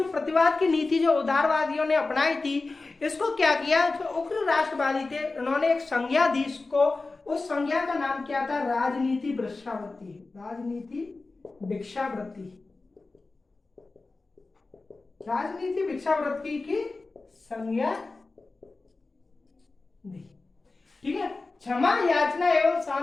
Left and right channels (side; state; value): right; quieter; 3.6 dB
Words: प्रतिवाद की नीति जो उदारवादियों ने अपनाई थी, इसको क्या किया? जो उग्र राष्ट्रवादी थे उन्होंने एक संज्ञा दी इसको, उस संज्ञा का नाम क्या था? राजनीति भिक्षावृत्ति। राजनीति भिक्षावृत्ति की संज्ञा दी। ठीक है, क्षमा याचना एवं